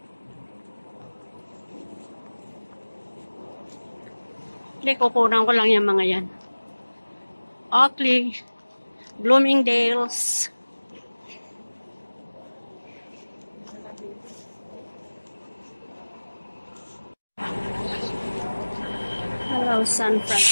Hindi, kukunan ko lang yung mga yan. Oakley, Bloomingdale's. Hello, San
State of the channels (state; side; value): inverted; both; correlation -1.00